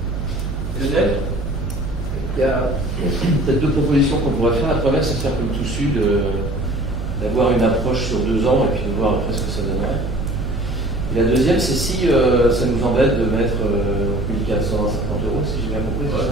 Lionel ? Il y a peut-être deux propositions qu'on pourrait faire. La première, c'est de faire comme tout sud, d'avoir une approche sur 2 ans et puis de voir après ce que ça donnerait. Et la deuxième, c'est si ça nous embête de mettre 1450 €, si j'ai bien compris,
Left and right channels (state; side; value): noise; right; hum, 4 dB below the sound